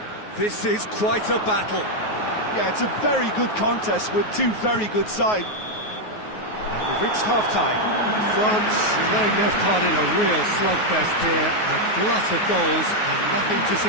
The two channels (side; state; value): right; late; 9.4 ms